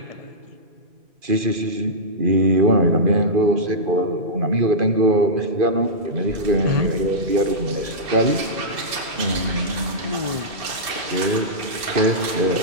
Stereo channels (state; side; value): late; left; 2.6 ms